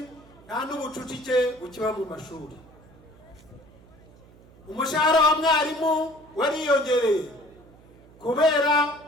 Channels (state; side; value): noise; right; hum, 25 dB below the sound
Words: nta n'ubucucike bukiba mu mashuri. Umushahara wa mwarimu wariyongereye kubera